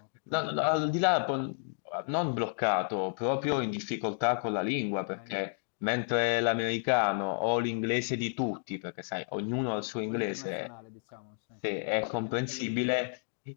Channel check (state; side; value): silent; right; digital silence